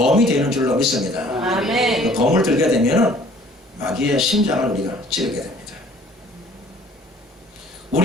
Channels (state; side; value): normal; both; correlation 0.54